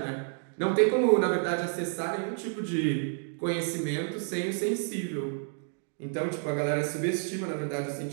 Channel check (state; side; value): silent; left; 55 dB below the other